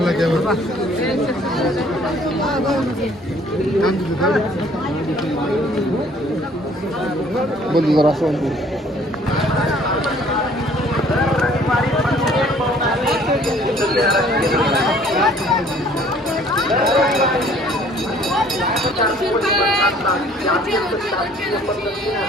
कॅमेरा बंद जरा असं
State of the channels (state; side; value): normal; both; correlation 0.57